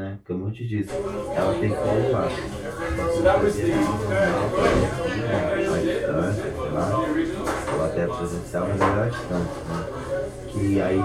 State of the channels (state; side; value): identical; both; correlation 1.00